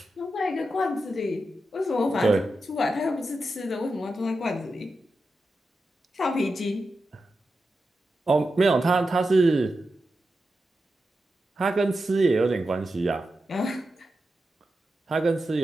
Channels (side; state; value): both; normal; correlation 0.90